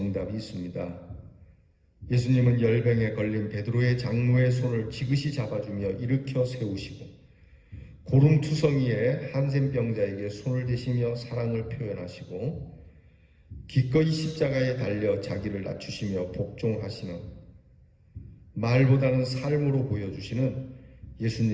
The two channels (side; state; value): both; identical; correlation 1.00